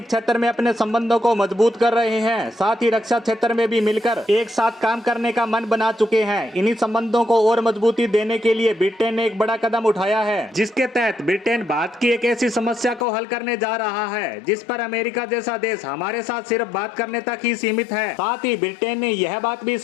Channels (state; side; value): drops out; right; at 13.1 s